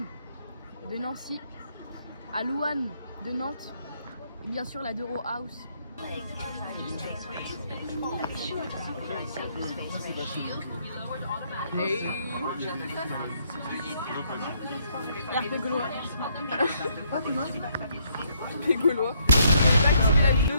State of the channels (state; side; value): inverted; both; correlation -0.70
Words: de Nancy, à Louane de Nantes, et bien sûr la Dero House. Hey. L'air gaulois. Les Gaulois. J'ai pas activé la vidéo,